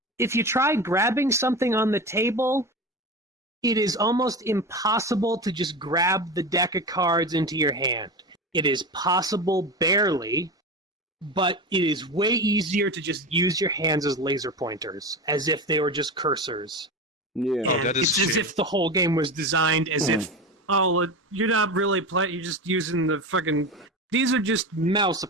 if you try grabbing something on the table, it is almost impossible to just grab the deck of cards into your hand. It is possible barely, but it is way easier to just use your hands as laser pointers, as if they were just cursors. Yeah, and it's as if the whole game was designed as if, you're not really playing, you're just using the fucking... These are just mouse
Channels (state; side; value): normal; both; correlation 0.25